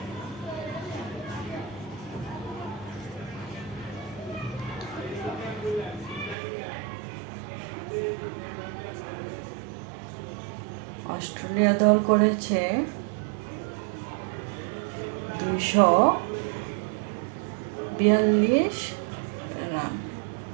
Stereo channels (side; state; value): left; drops out; at 6.4 s